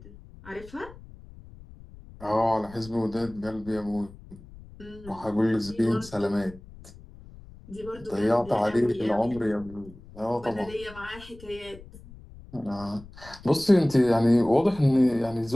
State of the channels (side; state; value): left; noise; rumble, 19 dB below the sound